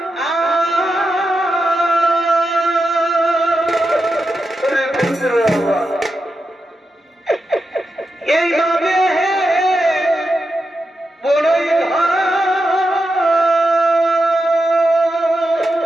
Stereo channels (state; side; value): normal; both; correlation 0.88